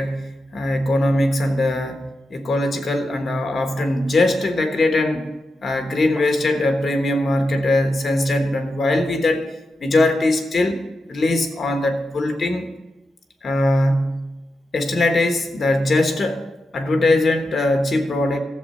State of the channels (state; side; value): normal; both; correlation 0.88